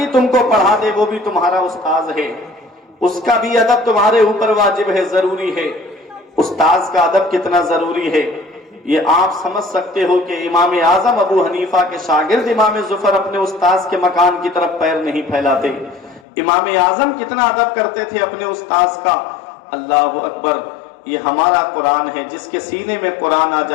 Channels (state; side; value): drops out; right; at 16.2 s